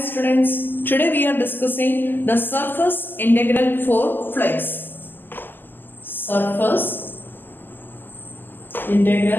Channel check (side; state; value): right; late; 0.091 ms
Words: today we are discussing the surface integral for flux. Surface